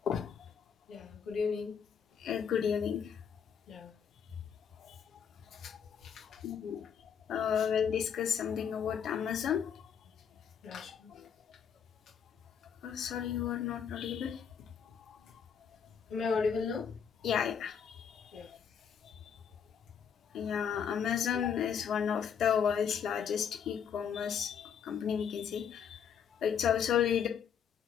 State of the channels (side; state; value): right; quieter; 7.6 dB